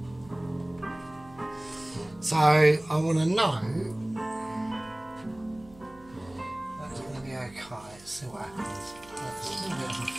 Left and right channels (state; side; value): noise; right; hum, 23 dB below the sound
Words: So I want to know that's going to be okay. Let's see what happens. That's a little bit of a